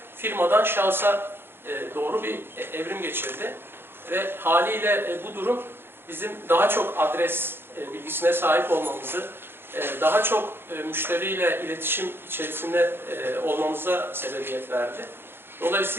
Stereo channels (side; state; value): left; late; 0.11 ms